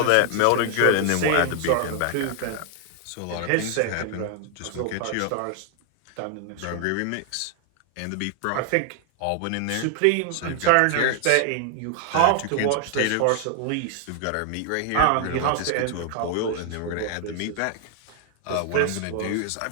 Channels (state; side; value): different; both; correlation 0.00